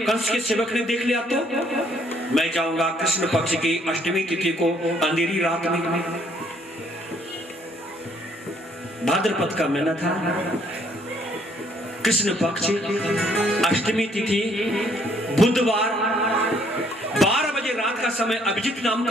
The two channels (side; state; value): both; normal; correlation 0.65